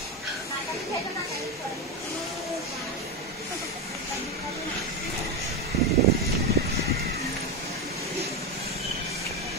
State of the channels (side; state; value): both; normal; correlation 0.12